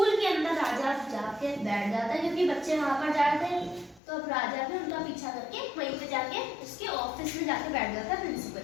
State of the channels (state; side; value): drops out; right; at 4.0 s